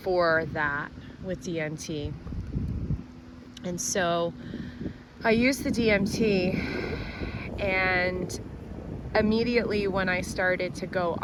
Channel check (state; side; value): identical; both; correlation 1.00